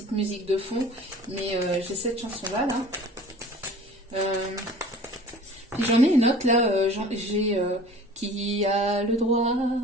musique de fond. Mais j'ai cette chanson-là, là. J'en ai une autre, là. J'ai qui a le droit,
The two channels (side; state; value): both; normal; correlation 0.44